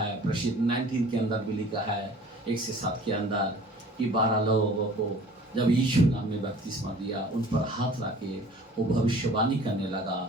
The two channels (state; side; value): normal; both; correlation 0.47